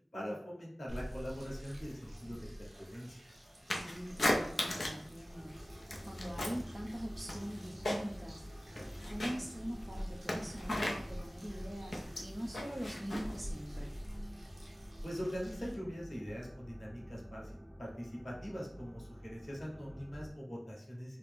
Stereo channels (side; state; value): both; normal; correlation 0.97